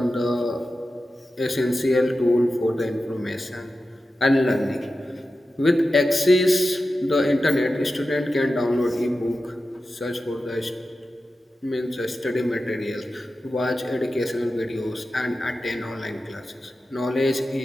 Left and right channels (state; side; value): normal; both; correlation 0.92